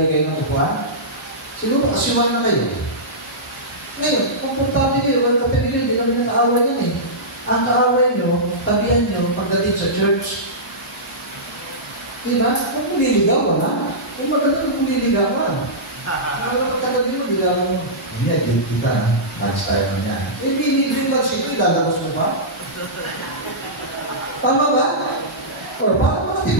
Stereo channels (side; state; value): both; normal; correlation -0.16